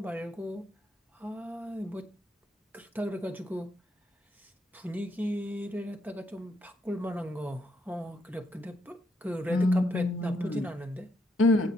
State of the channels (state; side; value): normal; both; correlation 0.75